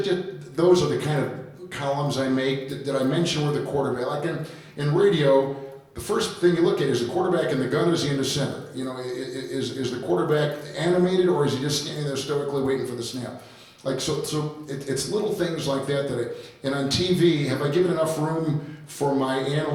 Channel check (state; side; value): identical; both; correlation 1.00